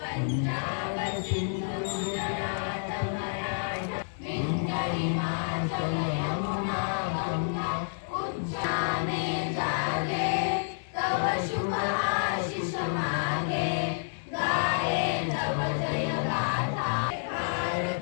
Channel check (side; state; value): right; silent; digital silence